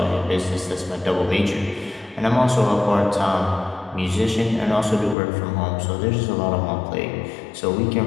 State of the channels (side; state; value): right; drops out; at 5.2 s